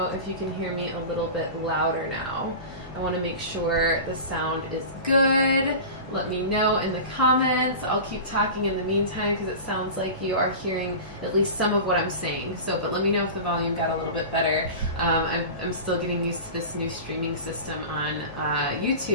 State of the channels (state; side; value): inverted; both; correlation -0.31